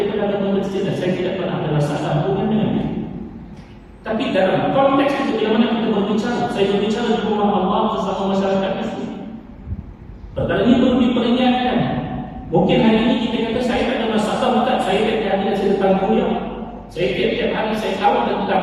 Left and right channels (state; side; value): identical; both; correlation 1.00